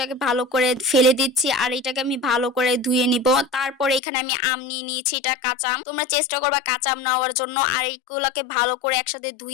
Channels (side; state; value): right; drops out; at 4.0 s